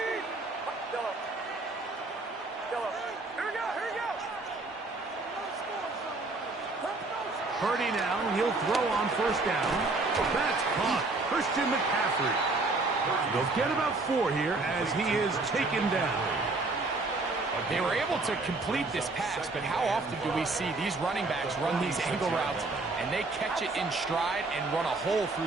Purdy now, he'll throw on first down. That's caught. Christian McCaffrey. They'll get about 4 here as he is taken down. They were able to complete this pass, but how often do we see these running backs run these angle routes and they catch it in stride and run a hole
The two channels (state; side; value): quieter; left; 3.4 dB